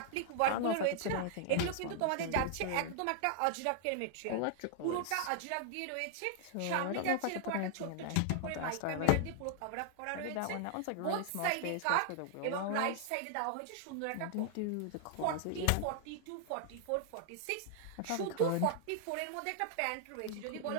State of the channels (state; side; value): different; both; correlation -0.01